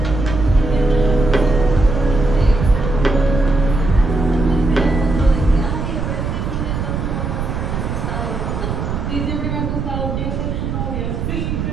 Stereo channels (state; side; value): noise; right; rumble, 3 dB below the sound